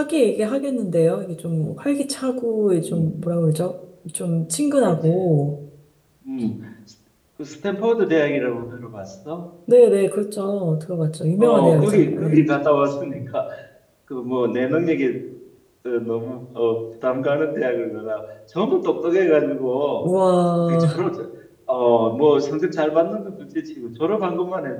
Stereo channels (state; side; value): identical; both; correlation 1.00